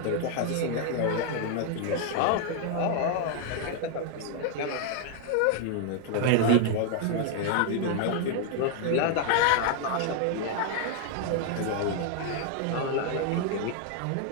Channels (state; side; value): different; both; correlation 0.00